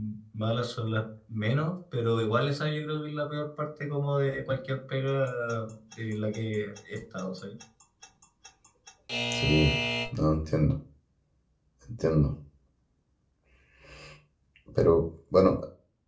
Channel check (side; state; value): both; identical; correlation 1.00